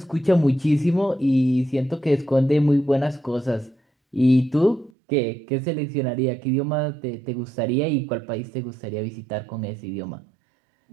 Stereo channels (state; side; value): drops out; left; at 4.9 s